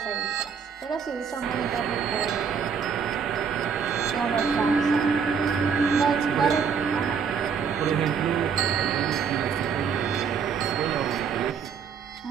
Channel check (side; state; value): left; quieter; 6.4 dB